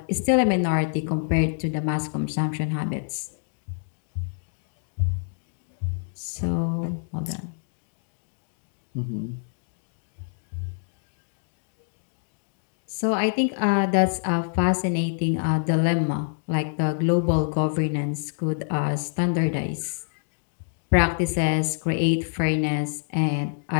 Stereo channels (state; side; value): silent; right; digital silence